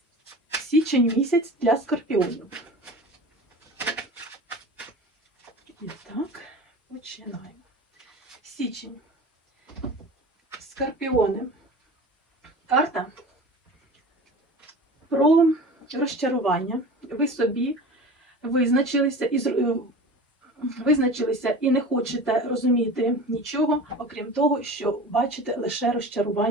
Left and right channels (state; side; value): normal; both; correlation 0.35